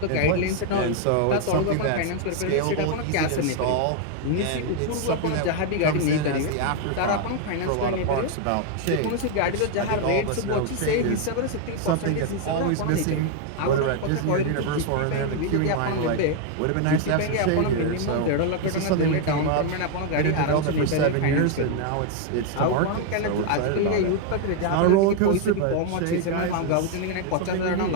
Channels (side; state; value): both; different; correlation 0.00